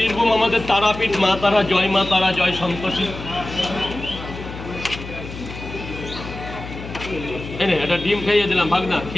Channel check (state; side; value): noise; left; hum, 11 dB below the sound